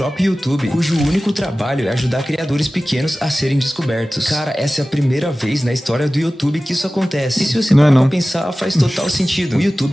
YouTube, cujo único trabalho é ajudar criadores pequenos a serem descobertos. Cara, essa é a primeira vez na história do YouTube que isso acontece. E se você parar pra pensar, faz total sentido. O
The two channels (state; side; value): normal; both; correlation 0.97